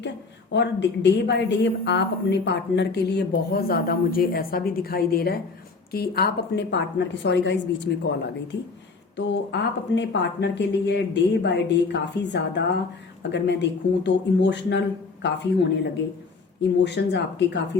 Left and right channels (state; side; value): quieter; right; 4.2 dB